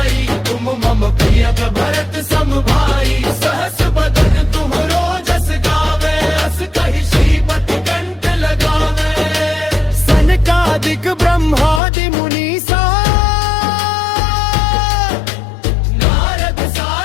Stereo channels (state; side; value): drops out; right; at 11.8 s